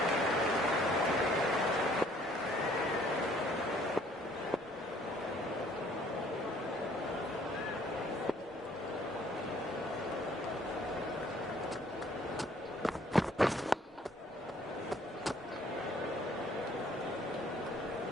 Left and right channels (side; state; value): both; normal; correlation 0.60